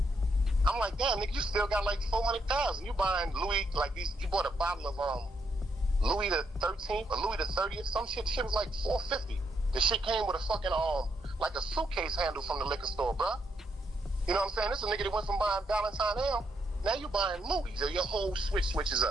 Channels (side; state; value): both; normal; correlation 0.77